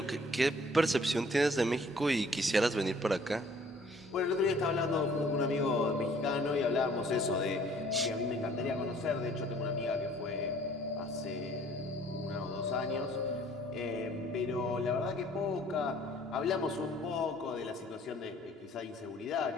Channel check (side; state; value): both; normal; correlation 0.56